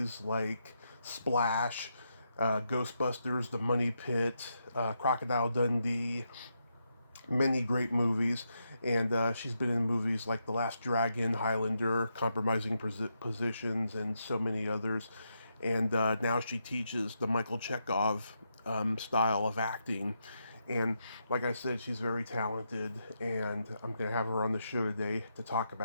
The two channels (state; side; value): inverted; both; correlation -0.82